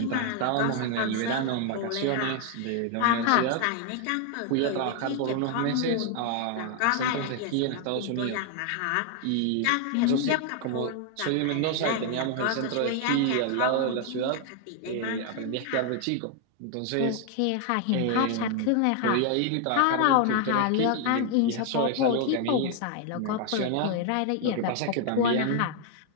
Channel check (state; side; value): different; both; correlation 0.00